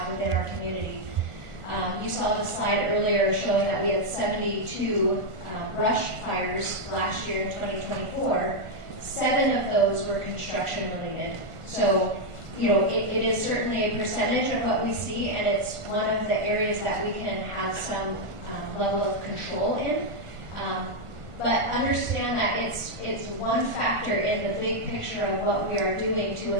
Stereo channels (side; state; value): left; late; 1.5 ms